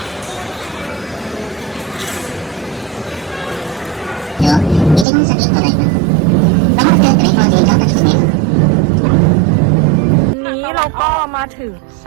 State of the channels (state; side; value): drops out; left; at 5.1 s